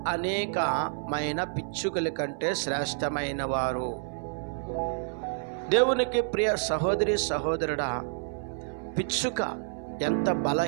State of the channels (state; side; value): silent; left; 59 dB below the other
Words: అనేకమైన పిచ్చుకల కంటే శ్రేష్టమైన వారు. దేవునికి ప్రియ సహోదరి సహోదరుడా, పిచ్చుక ఎంత